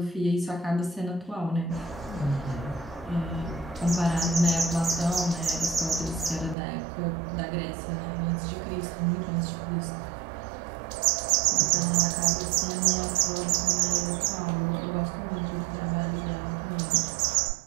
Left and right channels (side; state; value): left; drops out; at 6.6 s